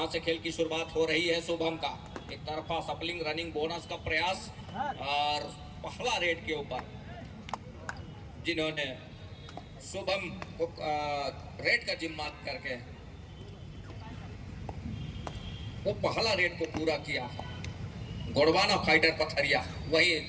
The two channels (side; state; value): both; identical; correlation 1.00